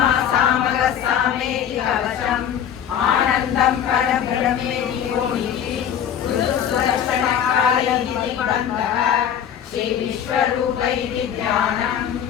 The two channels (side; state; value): right; quieter; 9.2 dB